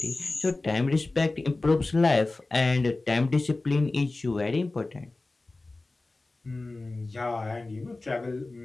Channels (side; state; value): right; quieter; 3.2 dB